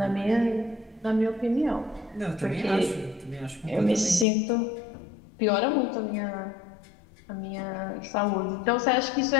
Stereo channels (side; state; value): right; drops out; at 4.2 s